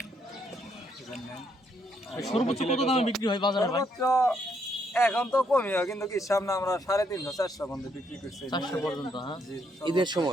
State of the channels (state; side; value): normal; both; correlation 0.73